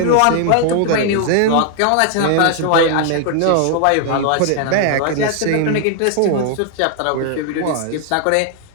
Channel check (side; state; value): both; different; correlation 0.00